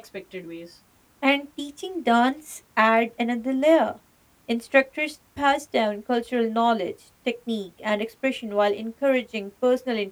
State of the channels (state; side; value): identical; both; correlation 1.00